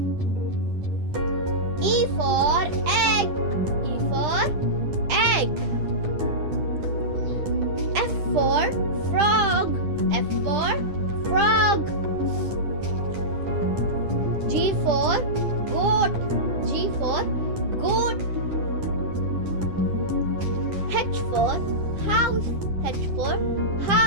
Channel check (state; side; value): late; left; 10 ms